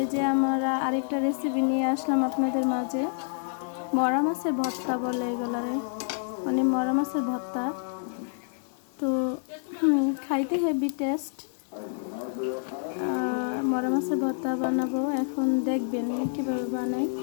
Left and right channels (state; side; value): silent; right; digital silence